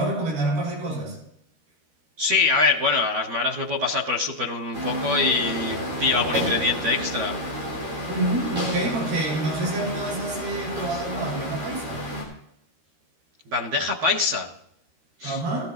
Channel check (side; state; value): left; late; 13 ms